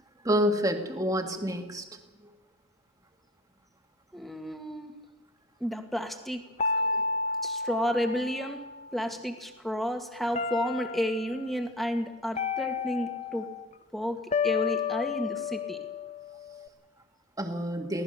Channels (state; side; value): normal; both; correlation 0.40